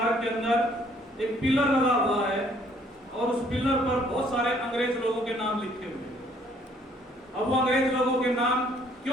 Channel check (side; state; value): both; normal; correlation 0.62